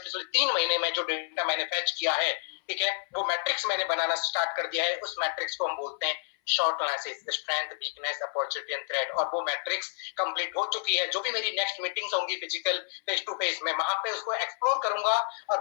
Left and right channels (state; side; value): silent; right; 58 dB below the other